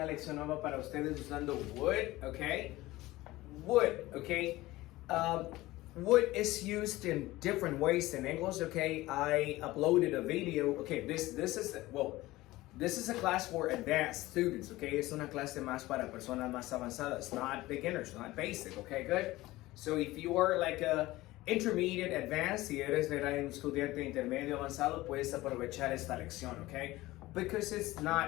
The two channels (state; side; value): quieter; right; 18.3 dB